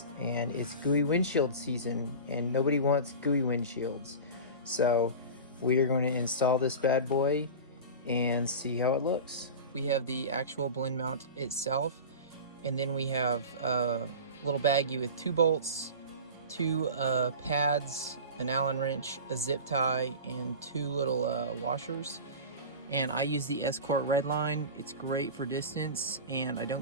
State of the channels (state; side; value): inverted; both; correlation -0.31